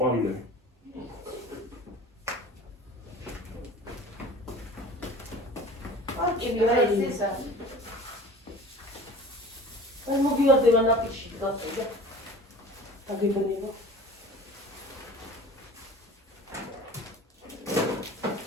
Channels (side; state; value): both; normal; correlation 0.42